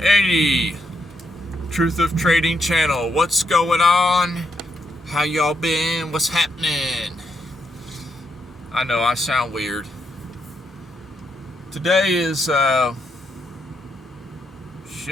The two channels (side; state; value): both; normal; correlation 0.79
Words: Truth of Trading channel. What's going on? How y'all been? What's happening? I know I sound weird. Today is